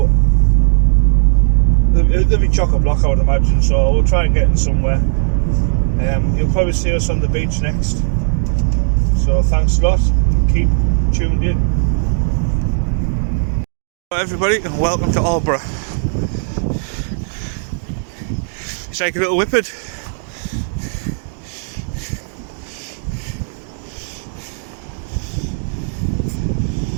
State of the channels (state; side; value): silent; left; 63 dB below the other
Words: there'll be chock-a-block I would imagine, so we'll try and get in somewhere. You'll probably see us on the beach next, so thanks a lot, keep tuned in. Hello everybody and welcome to Albury. It's like a little whippet.